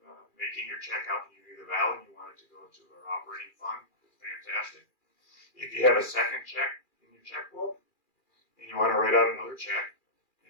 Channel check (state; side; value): late; right; 2.4 ms